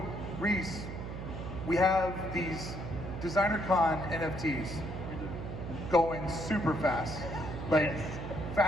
Rhys, we have these DesignerCon NFTs going super fast. Like,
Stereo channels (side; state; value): right; noise; hum, 7 dB below the sound